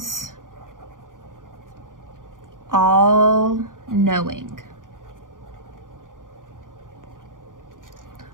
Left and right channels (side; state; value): left; late; 0.89 ms